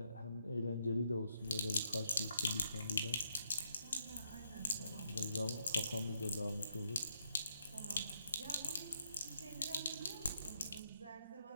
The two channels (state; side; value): inverted; both; correlation -0.76